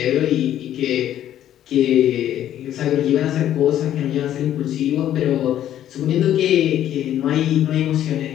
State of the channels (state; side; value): quieter; right; 11.5 dB